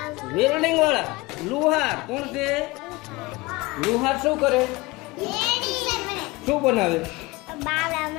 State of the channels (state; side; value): quieter; right; 22.3 dB